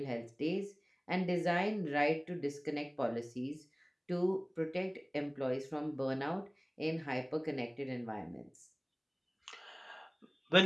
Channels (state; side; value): identical; both; correlation 1.00